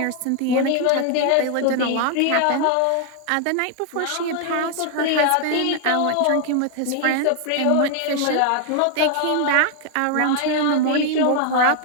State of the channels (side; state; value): both; different; correlation 0.00